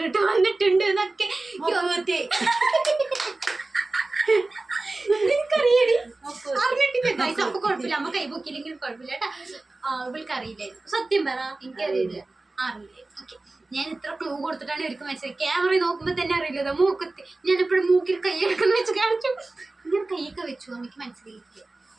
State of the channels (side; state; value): left; quieter; 3.2 dB